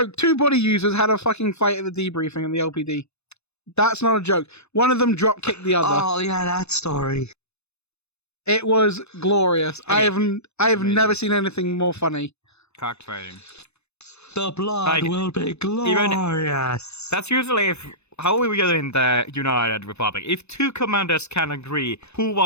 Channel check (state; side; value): late; right; 0.80 ms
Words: 2 body users had a fucking fight at the debriefing in the LPD. That's not a joke. One of them drop kicked the other. Oh yeah, that story. It was glorious. I have Amazing. never seen anything more funny. Cockfighting. The blood Like, will be glorious. That's usually how we do in the United Republic. If 2 commanders can agree who